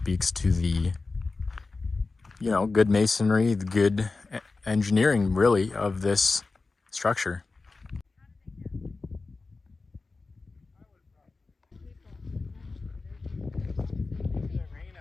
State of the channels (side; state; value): right; quieter; 3.8 dB